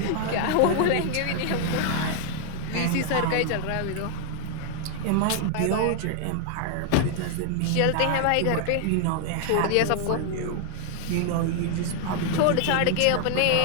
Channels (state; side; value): different; both; correlation 0.00